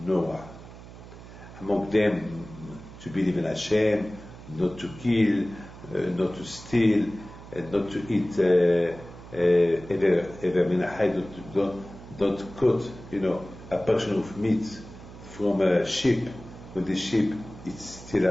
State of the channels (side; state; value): right; noise; hum, 16 dB below the sound